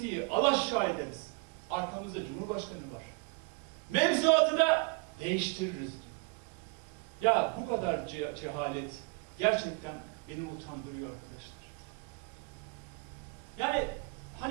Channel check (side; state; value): left; quieter; 31.8 dB